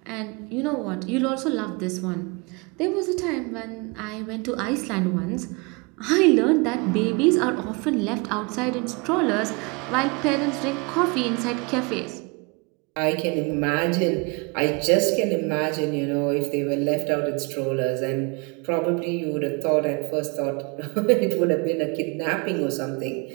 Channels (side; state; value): left; quieter; 29.8 dB